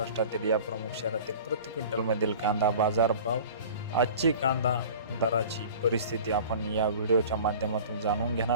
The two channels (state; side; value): inverted; both; correlation -0.41